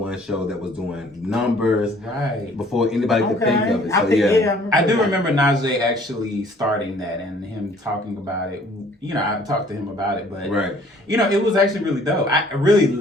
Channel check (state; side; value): normal; both; correlation 0.57